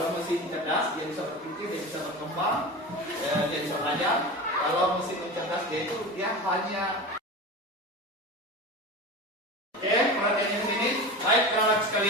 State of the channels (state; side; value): normal; both; correlation 0.29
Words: mesin cerdas dia bisa berpikir, dia bisa berkembang, dia bisa belajar. Kalau mesin cerdas dia hanya perhatiannya di sini. Baik, anak